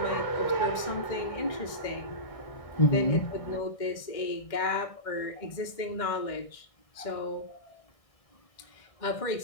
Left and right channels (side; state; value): right; late; 1.6 ms